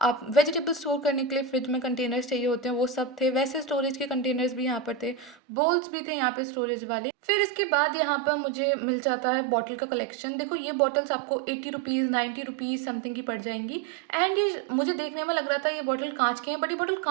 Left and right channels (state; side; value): drops out; left; at 5.4 s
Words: आप वेजिटेबल स्टोर करने के लिए फ्रिज में कंटेनर्स चाहिए होते हैं वो सब थे। वैसे स्टोरेज के कंटेनर्स भी यहाँ पर थे, बोल्स भी थे यहाँ पे स्टोरेज वाले। फिर इसके बाद यहाँ पर मुझे मिल जाता है बॉटल का कलेक्शन। देखो ये बॉटल्स आपको 80 रुपीज़, 90 रुपीज़ समथिंग की पड़ जाएंगी। एंड ये मुझे देखने में लग रहा था ये बॉटल कांच के हैं, बट ये बॉटल